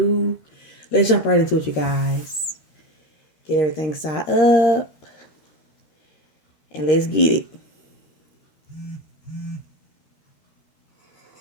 let's jump right into it, you guys. Get everything set up and let's get it.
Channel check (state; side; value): late; right; 13 ms